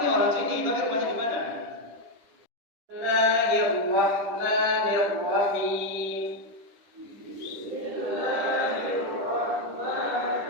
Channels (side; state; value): left; late; 10 ms